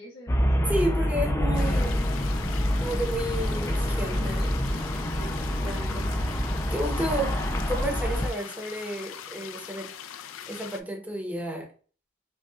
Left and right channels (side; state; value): both; normal; correlation 0.83